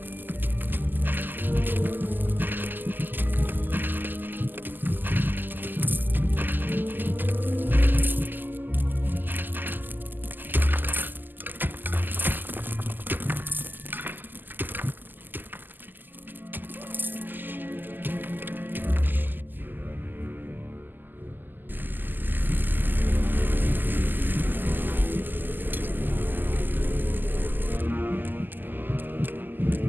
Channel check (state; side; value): late; left; 0.089 ms